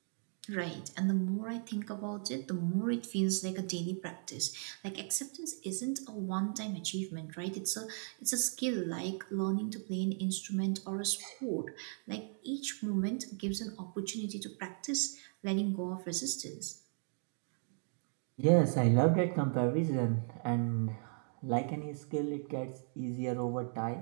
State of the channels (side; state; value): left; silent; 53 dB below the other